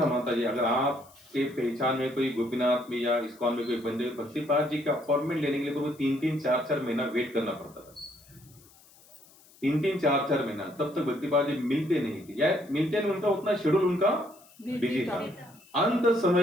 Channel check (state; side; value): noise; left; hiss, 26 dB below the sound